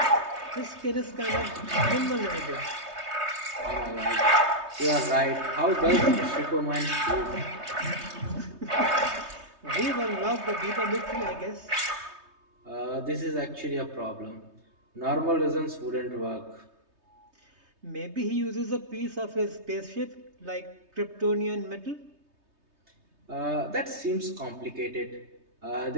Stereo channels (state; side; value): late; left; 3.2 ms